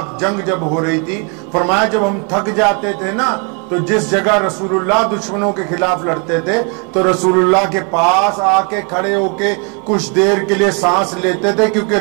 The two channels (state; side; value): quieter; left; 35.5 dB